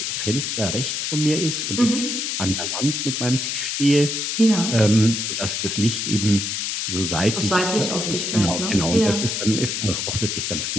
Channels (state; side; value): noise; left; hiss, 2 dB below the sound